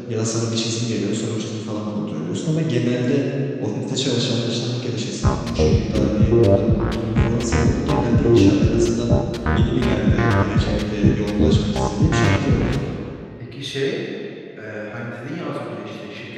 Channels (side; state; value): both; identical; correlation 1.00